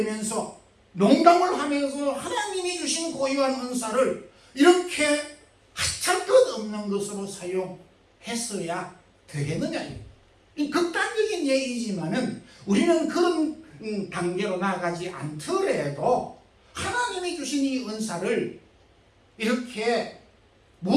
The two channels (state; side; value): identical; both; correlation 1.00